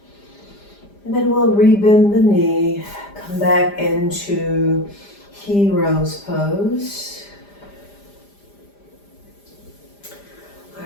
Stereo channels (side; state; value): right; late; 5.0 ms